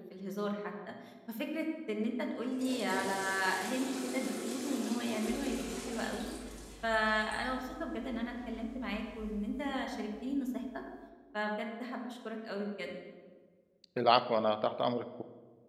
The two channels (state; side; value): identical; both; correlation 1.00